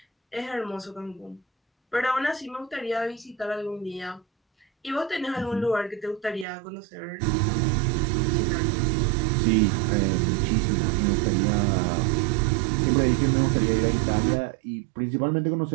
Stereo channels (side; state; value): left; drops out; at 6.5 s